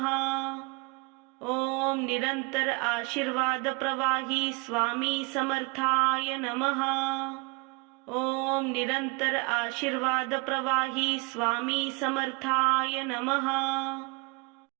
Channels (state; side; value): quieter; left; 27.8 dB